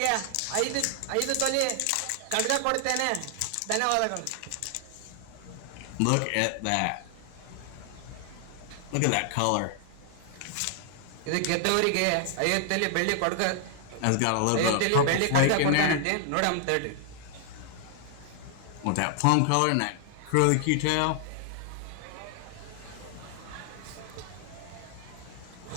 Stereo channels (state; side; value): different; both; correlation 0.00